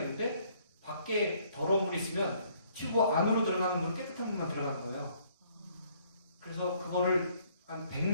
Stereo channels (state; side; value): inverted; both; correlation -0.64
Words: 밖에 더러운 물이 있으면 튜브 안으로 들어가는 물은 깨끗한 물만 들어가는 거예요. 그래서 그거를 한